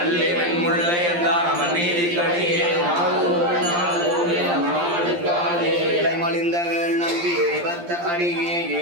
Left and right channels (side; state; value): left; late; 12 ms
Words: அல்லிவன் முல்லை என்றார் அவன் நீதி கடியே மலிந்தகள் நம்பி எரிபத்த அடியே